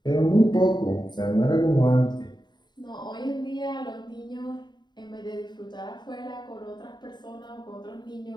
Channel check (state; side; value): late; right; 0.21 ms